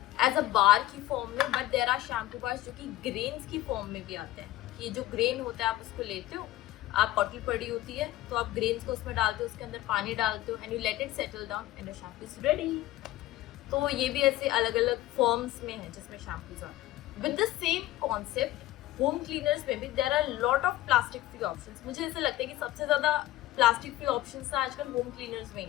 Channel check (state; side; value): quieter; right; 15.6 dB